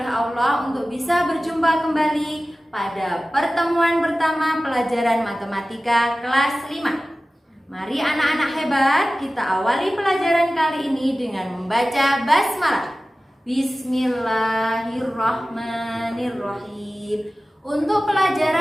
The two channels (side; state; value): both; normal; correlation 0.96